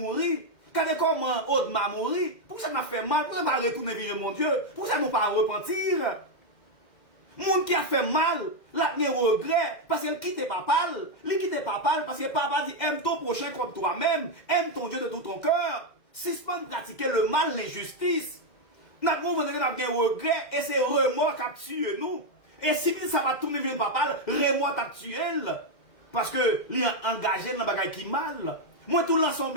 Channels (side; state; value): right; late; 2.0 ms